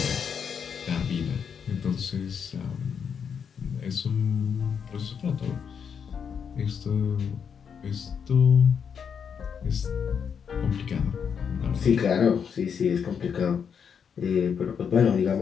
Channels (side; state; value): right; quieter; 7.0 dB